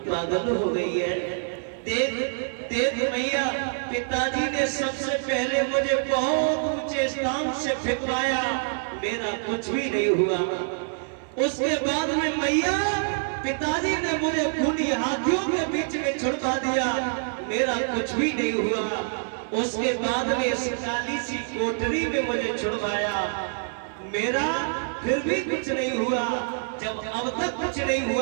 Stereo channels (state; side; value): silent; left; digital silence